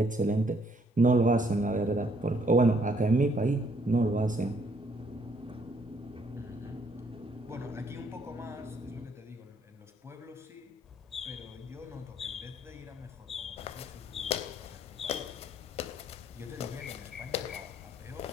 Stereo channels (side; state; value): both; normal; correlation 0.67